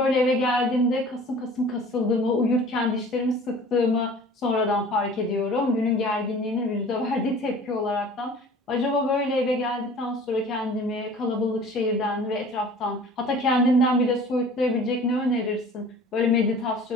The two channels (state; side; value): normal; both; correlation 0.45